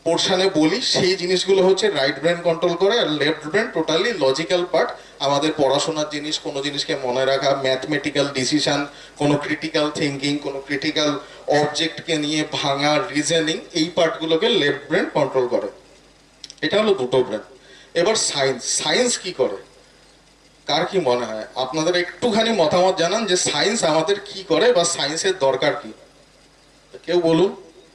পোর্শনে বলি, সেই জিনিসগুলো হচ্ছে রাইট ব্রেন কন্ট্রোল করে। আর left brain totally logical part, আমাদের পড়াশোনার জিনিস, কোনো জিনিসকে মনে রাখা, ম্যাথমেটিক্যাল ডিসিশন, কোনো ক্রিটিক্যাল থিঙ্কিং, কোনো ক্রিটিক্যাল অবজেক্টকে নিয়ে ভাঙা, রিজনিং, এই পার্টগুলোকে লেফট ব্রেন কন্ট্রোল করে। এটা হলো দুটো ব্রেন। এবার সায়েন্স কি করে, কার কি মনে হয়? আপনাদের একটুখানি মতামত জানান যে সায়েন্স আমাদের কি করে বা সায়েন্সের দরকার কি। কেউ বলুন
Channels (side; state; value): both; identical; correlation 1.00